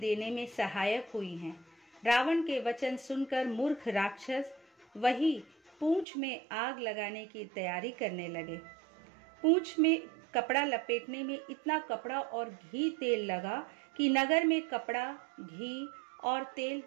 में सहायक हुई हैं। रावण के वचन सुनकर मूर्ख राक्षस वही पूंछ में आग लगाने की तैयारी करने लगे। पूंछ में कपड़ा लपेटने में इतना कपड़ा और घी तेल लगा कि नगर में कपड़ा, घी और तेल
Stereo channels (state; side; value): drops out; left; at 6.1 s